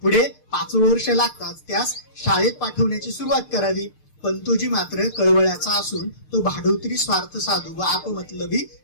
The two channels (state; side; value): late; right; 6.6 ms